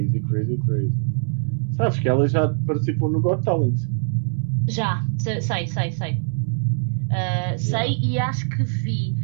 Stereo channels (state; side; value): silent; left; digital silence